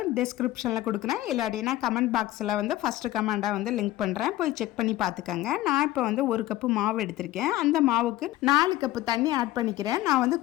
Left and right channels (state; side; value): quieter; right; 15.9 dB